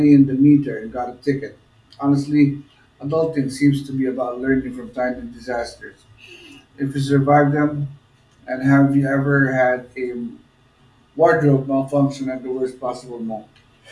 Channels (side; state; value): both; identical; correlation 1.00